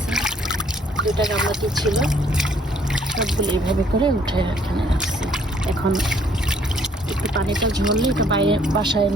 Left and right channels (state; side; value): normal; both; correlation 0.63